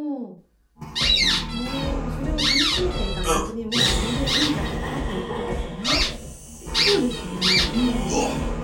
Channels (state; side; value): identical; both; correlation 1.00